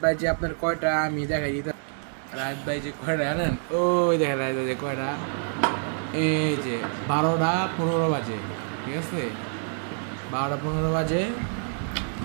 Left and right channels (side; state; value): left; silent; 60 dB below the other